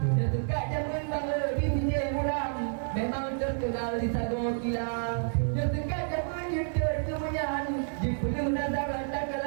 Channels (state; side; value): silent; left; 58 dB below the other